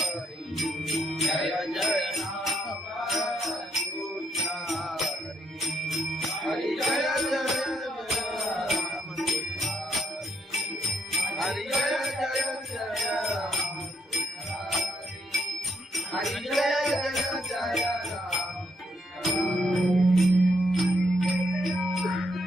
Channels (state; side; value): normal; both; correlation 0.75